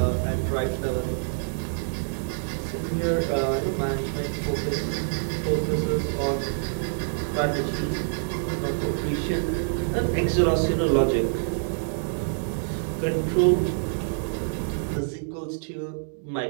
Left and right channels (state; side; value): silent; left; digital silence